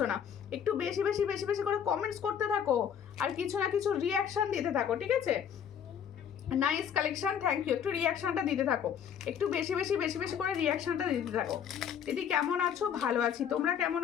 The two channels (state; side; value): quieter; right; 8.3 dB